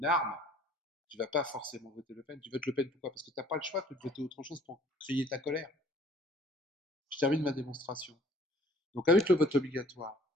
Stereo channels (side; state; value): both; normal; correlation 0.54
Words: arme, tu vas pas forcément voter Le Pen. Tu votes Le Pen pourquoi? Parce que tu n'as pas le choix de voter autre chose pour crier ta colère. Je termine ma démonstration. Donc avec le vote obligatoire,